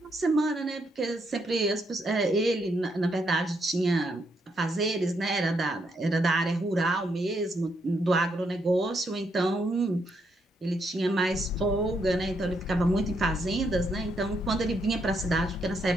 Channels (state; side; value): normal; both; correlation 0.77